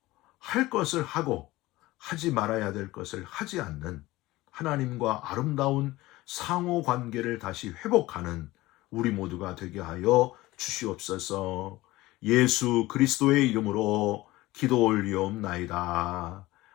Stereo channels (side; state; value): right; quieter; 18.7 dB